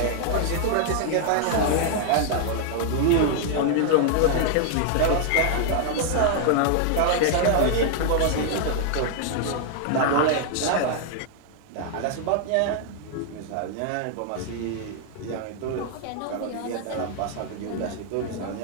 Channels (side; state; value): both; different; correlation 0.00